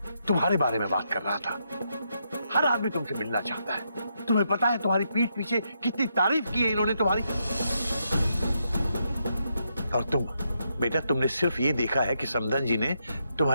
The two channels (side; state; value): both; inverted; correlation -0.80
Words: तुम्हारे बारे में बात कर रहा था। हर आदमी तुमसे मिलना चाहता है। तुम्हें पता है तुम्हारी पीठ पीछे कितनी तारीफ की है इन्होंने तुम्हारी। और तुम बेटा, तुमने सिर्फ ये देखा है कि समदन जी ने